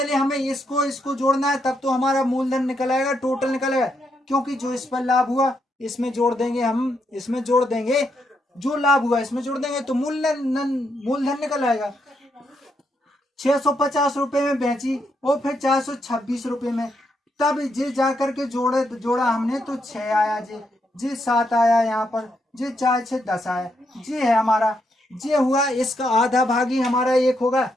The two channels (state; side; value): normal; both; correlation 0.79